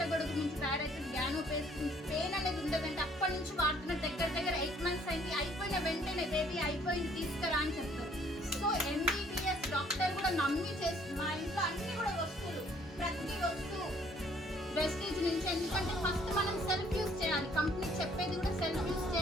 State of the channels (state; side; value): normal; both; correlation 0.61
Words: నుంచి తయారైతుంది, గ్యానో పేస్ట్ పెయిన్ అనేది ఉండదంటే అప్పటి నుంచి వాడుతున్న దగ్గర 8 months అయింది. అయిపోయిన వెంటనే బేబీ అయిపోయింది తీసుకురా అని చెప్తారు. సో ఎంబీబీఎస్ డాక్టర్ కూడా నమ్మి చేస్తుంది. మా ఇంట్లో అన్ని కూడా వస్తువులు, ప్రతి వస్తువు వెస్టీజ్ నుంచి. ఎందుకంటే ఫస్ట్ మనం సెల్ఫ్